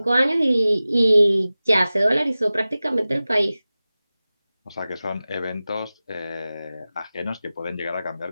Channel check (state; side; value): inverted; both; correlation -0.96